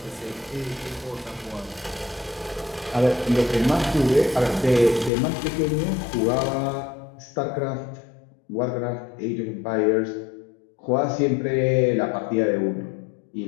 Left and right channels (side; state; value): right; drops out; at 5.1 s